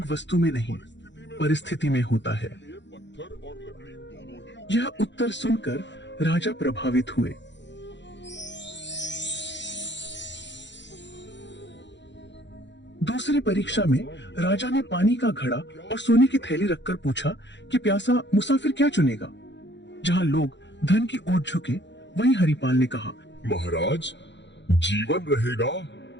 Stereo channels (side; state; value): right; late; 0.52 ms